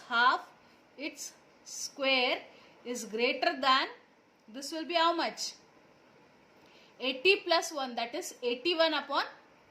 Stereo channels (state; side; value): identical; both; correlation 1.00